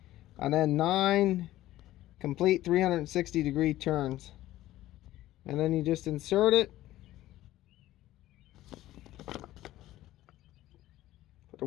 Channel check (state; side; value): quieter; right; 15.1 dB